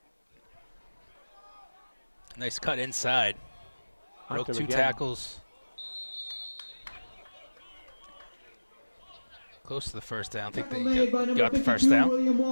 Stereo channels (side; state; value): both; inverted; correlation -1.00